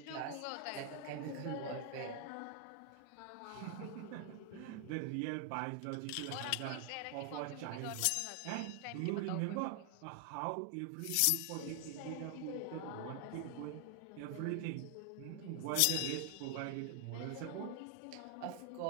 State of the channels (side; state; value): both; different; correlation 0.00